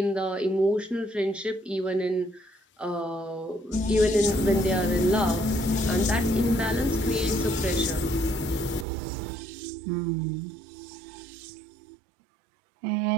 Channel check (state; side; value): drops out; left; at 8.8 s